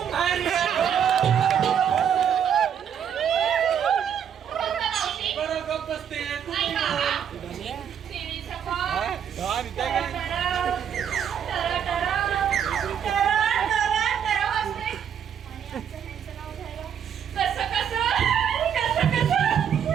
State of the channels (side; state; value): left; quieter; 8.5 dB